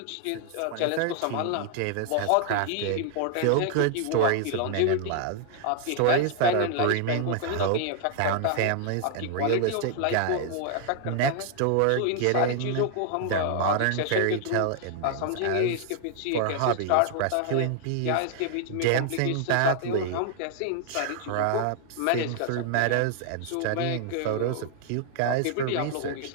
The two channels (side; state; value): both; different; correlation 0.00